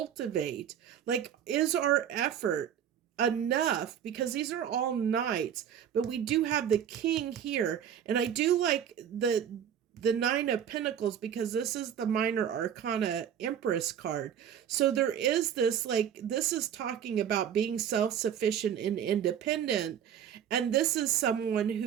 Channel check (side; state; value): left; quieter; 9.1 dB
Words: Like, is our effort enough? Because these are all knights, but we do have the king here, and I do like the nine of pentacles because this is the minor arcana empress card. So there is this, like, this is talking about being self-sufficient and independent, and this is someone